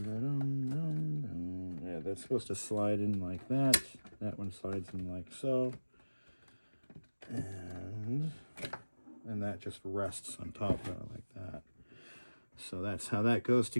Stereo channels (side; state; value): both; inverted; correlation -1.00